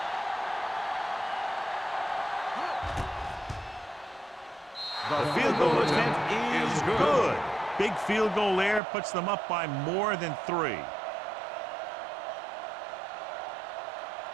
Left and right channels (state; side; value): drops out; left; at 8.8 s